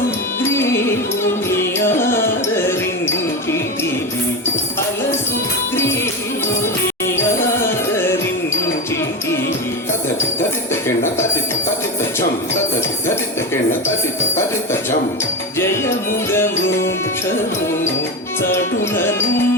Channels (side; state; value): both; normal; correlation 0.19